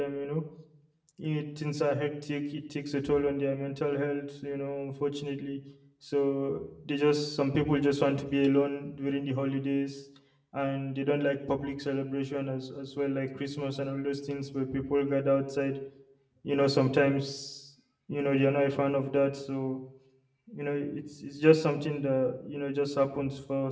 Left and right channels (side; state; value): both; identical; correlation 1.00